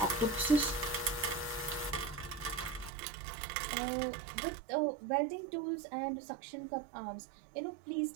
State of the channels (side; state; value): left; drops out; at 2.9 s